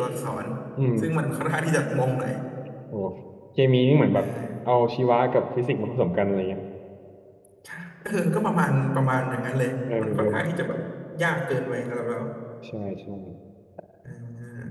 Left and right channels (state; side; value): identical; both; correlation 1.00